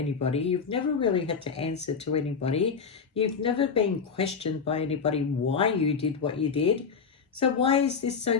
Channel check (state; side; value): quieter; right; 5.8 dB